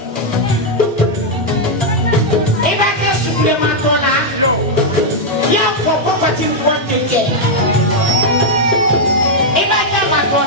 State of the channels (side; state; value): both; normal; correlation -0.02